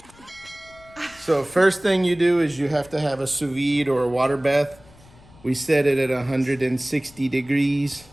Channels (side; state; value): left; noise; rumble, 25 dB below the sound